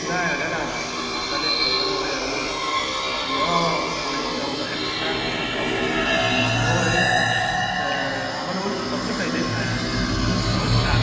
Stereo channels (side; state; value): both; identical; correlation 1.00